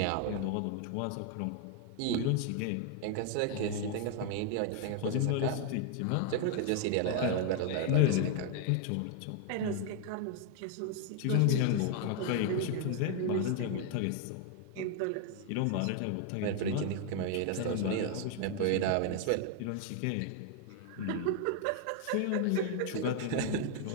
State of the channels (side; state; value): both; different; correlation 0.00